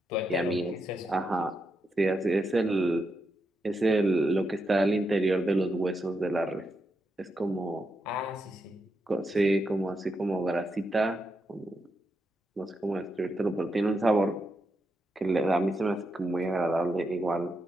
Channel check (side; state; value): both; normal; correlation 0.84